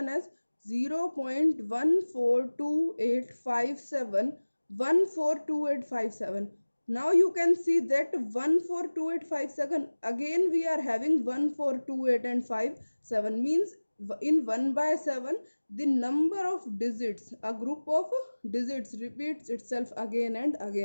as 0.142857, 142857. Now you can see that 142857, again we are having 1428 and 57, means in 1 by 7 the number of digits, a group of digits repeats itself again and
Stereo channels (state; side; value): inverted; both; correlation -1.00